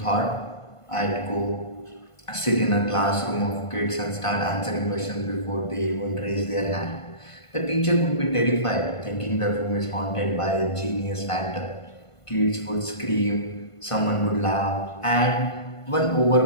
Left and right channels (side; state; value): right; late; 1.5 ms